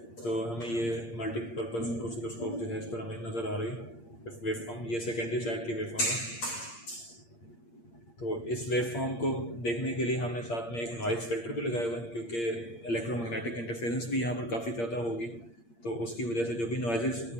तो हमें ये मल्टीपर्पज़ ऑसिलोस्कोप जो है इस पर हमें नज़र आ रही है वेवफॉर्म। ये सेकेंडरी साइड की वेवफॉर्म है। तो इस वेवफॉर्म को देखने के लिए हमने साथ में एक नॉइज़ फिल्टर भी लगाया हुआ है, क्योंकि इलेक्ट्रोमैग्नेटिक इंटरफेरेंस भी यहाँ पर काफ़ी ज़्यादा होगी, तो उसकी वजह से जो भी नॉइज़ेस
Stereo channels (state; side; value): late; right; 8.6 ms